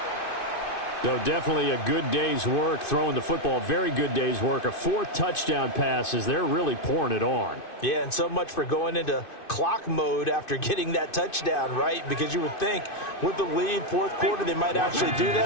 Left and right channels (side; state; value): right; late; 2.5 ms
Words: So definitely a good day's work throwing the football. Very good day's work. A 4th touchdown pass as they're really pouring it on. Yeah, and so much for going into clock mode after getting that touchdown, right? Because you would think with the lead, fourth quarter, they might actually do